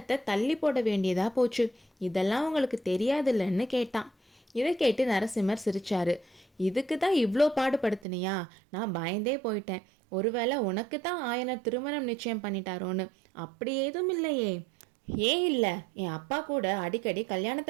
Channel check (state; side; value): drops out; left; at 8.0 s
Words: தள்ளி போட வேண்டியதா போச்சு. இதெல்லாம் உங்களுக்கு தெரியாதுல்லன்னு கேட்டான். இதை கேட்டு நரசிம்மர் சிரிச்சாரு. இதுக்கு தான் இவ்வளோ பாடுபடுத்தினியா? நான் பயந்தே போயிட்டேன். ஒருவேளை உனக்கு தான் ஆயனர் திருமணம் நிச்சயம் பண்ணிட்டாரோன்னு. அப்படி ஏதும் இல்லையே. ஏன் இல்லை? என் அப்பா கூட அடிக்கடி